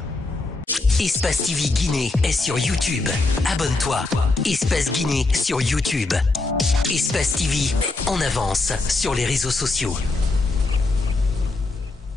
Espace TV Guinée est sur YouTube. Abonne-toi. Espace Guinée sur YouTube. Espace TV en avance sur les réseaux sociaux.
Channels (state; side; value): quieter; right; 3.3 dB